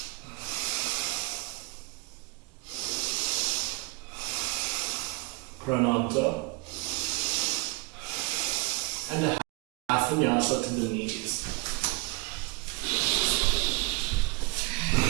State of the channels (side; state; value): left; quieter; 25.7 dB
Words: Prananta. And a half vinyasa to the knees.